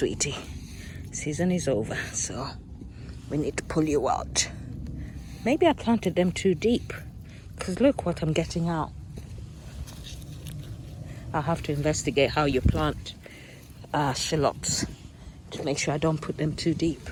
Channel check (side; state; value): both; identical; correlation 1.00